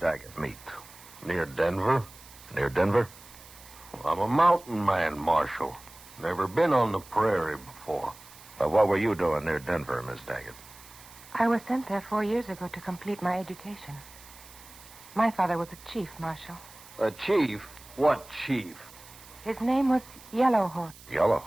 meet? Near Denver? Near Denver? Well, I'm a mountain man, Marshal. Never been on the prairie before. But what were you doing near Denver, Miss Daggett? I was sent there 4 years ago to complete my education. My father was a chief, Marshal. A chief? What chief? His name was Yellowhorse.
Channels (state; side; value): noise; right; hiss, 20 dB below the sound